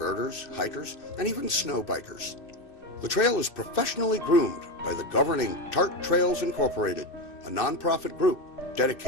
hikers, and even snow bikers. The trail is professionally groomed by the governing TART Trails Incorporated, a nonprofit group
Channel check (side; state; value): right; late; 2.6 ms